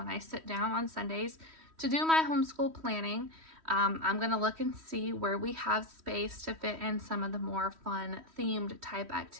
I sit down on Sundays to do my homeschool planning, I'm going to look and see where we have space to fit in some of the more fun themed type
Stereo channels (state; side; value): late; left; 3.1 ms